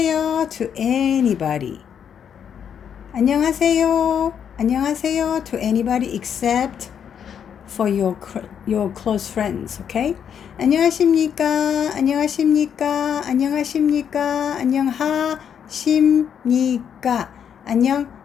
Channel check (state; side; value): quieter; right; 8.2 dB